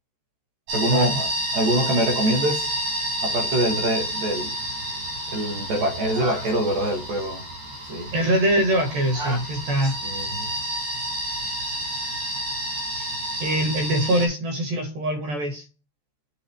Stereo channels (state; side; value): late; left; 14 ms